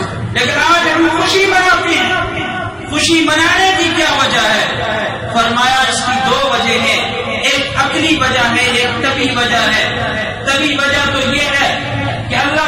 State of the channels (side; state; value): both; identical; correlation 1.00